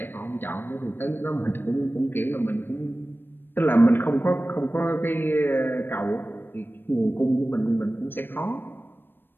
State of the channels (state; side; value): late; right; 0.096 ms